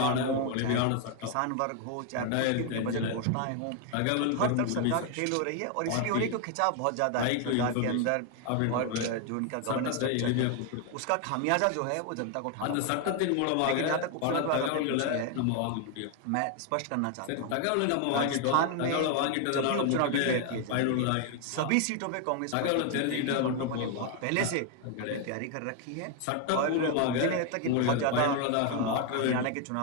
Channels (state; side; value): different; both; correlation 0.00